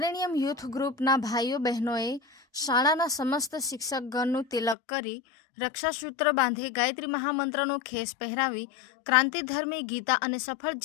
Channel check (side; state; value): right; drops out; at 4.8 s